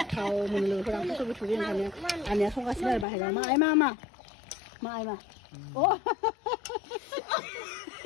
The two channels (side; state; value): right; drops out; at 3.1 s